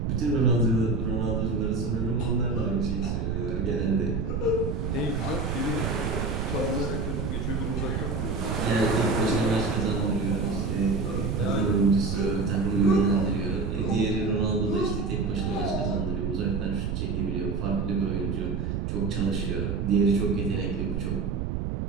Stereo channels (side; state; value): right; noise; rumble, 1 dB below the sound